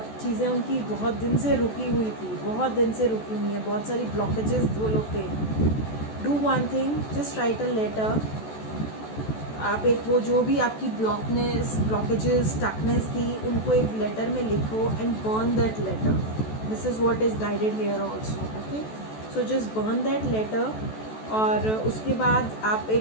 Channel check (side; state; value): right; late; 14 ms